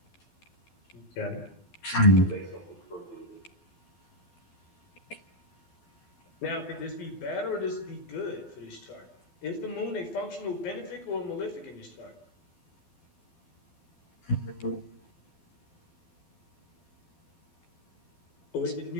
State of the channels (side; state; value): right; late; 12 ms